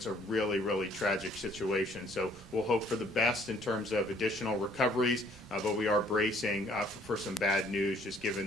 a really, really tragic situation. So we'll hope for the best in terms of additional recoveries, but we are bracing for some bad news, just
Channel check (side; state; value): both; normal; correlation 0.61